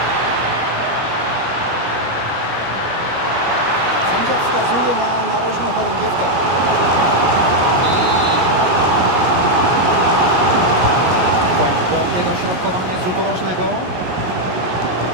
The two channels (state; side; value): late; left; 17 ms